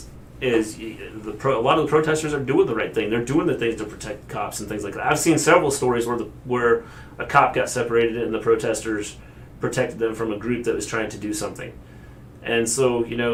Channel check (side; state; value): both; identical; correlation 1.00